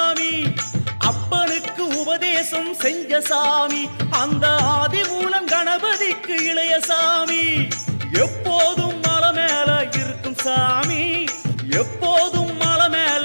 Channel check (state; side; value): inverted; both; correlation -1.00